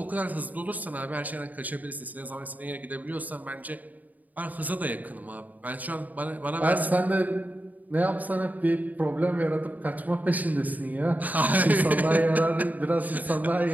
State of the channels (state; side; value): late; left; 0.078 ms